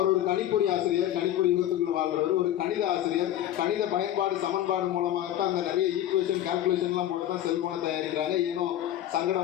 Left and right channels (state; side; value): quieter; right; 12.3 dB